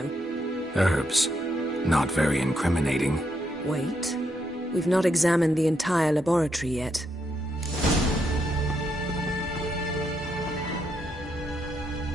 Herbs. Not very incriminating. Wait. We've not examined the entire laboratory yet.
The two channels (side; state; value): both; normal; correlation 0.79